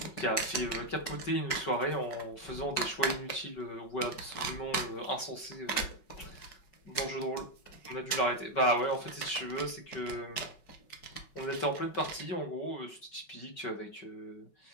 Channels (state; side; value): late; right; 5.4 ms